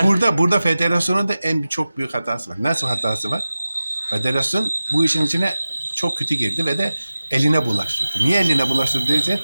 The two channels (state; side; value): inverted; both; correlation -0.95